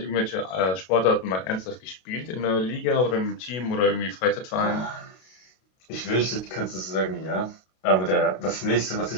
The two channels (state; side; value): late; right; 32 ms